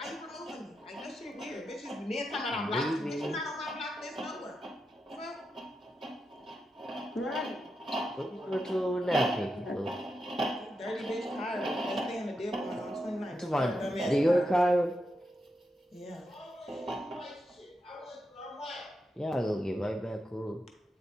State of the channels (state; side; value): normal; both; correlation 0.86